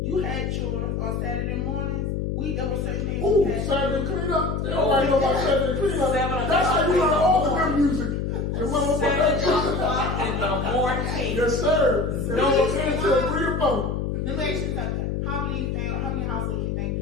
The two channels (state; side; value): noise; left; hum, 1 dB below the sound